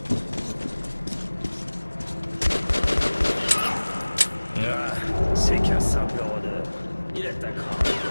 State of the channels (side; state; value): both; inverted; correlation -1.00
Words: Ah, c'est qu'un simple rôdeur. Il attaquera.